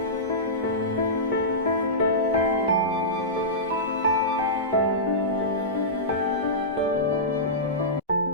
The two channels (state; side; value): normal; both; correlation -0.17